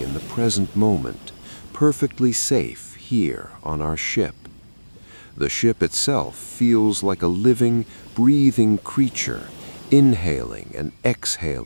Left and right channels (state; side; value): inverted; both; correlation -1.00